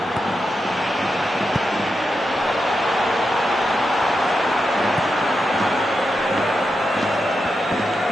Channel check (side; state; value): both; normal; correlation 0.87